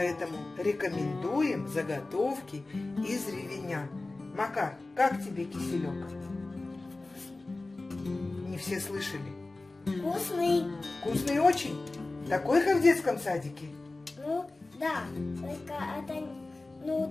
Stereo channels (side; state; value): right; quieter; 3.2 dB